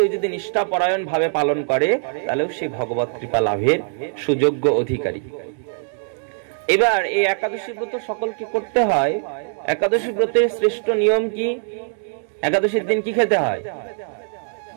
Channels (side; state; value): left; silent; 64 dB below the other